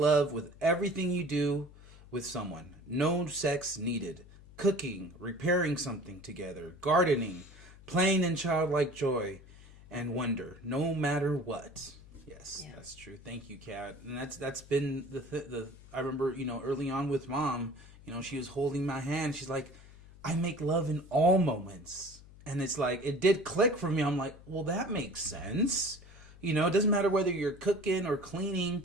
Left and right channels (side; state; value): left; noise; hum, 20 dB below the sound